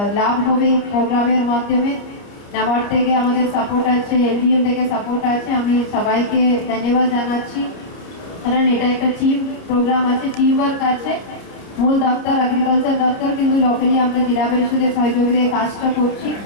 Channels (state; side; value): late; right; 29 ms